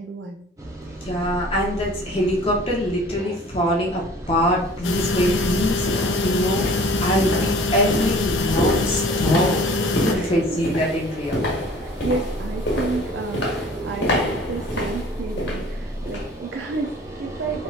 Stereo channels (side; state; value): both; normal; correlation 0.48